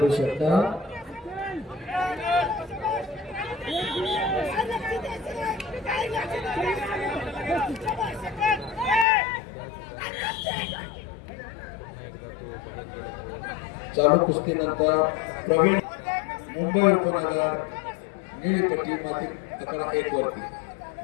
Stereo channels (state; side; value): drops out; right; at 9.1 s